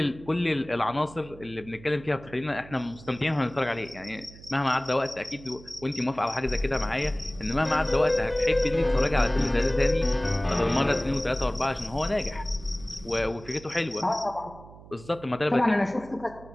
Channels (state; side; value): noise; right; hum, 19 dB below the sound